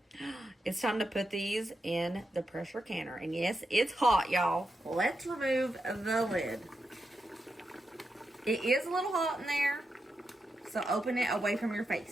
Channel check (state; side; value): normal; both; correlation 0.87